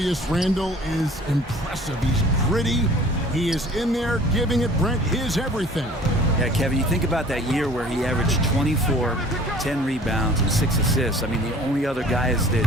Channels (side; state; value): both; normal; correlation 0.49